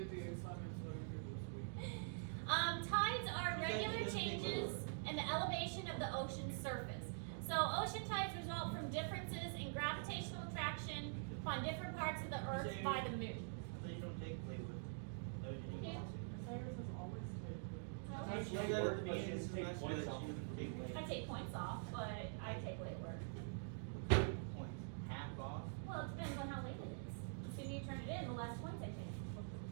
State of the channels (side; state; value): left; silent; digital silence